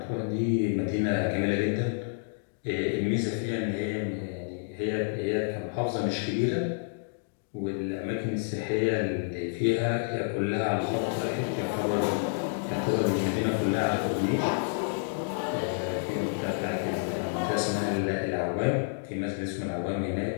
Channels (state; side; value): silent; right; digital silence